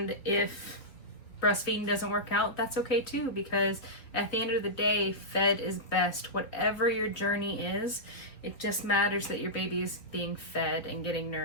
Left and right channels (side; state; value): right; late; 3.7 ms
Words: if breastfeeding doesn't work out, that's okay too, because at the end of the day, fed is best. Whatever your journey is, it just matters that your baby is being fed and getting